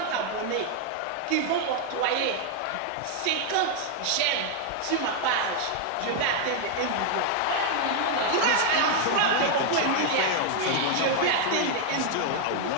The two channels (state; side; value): different; both; correlation 0.00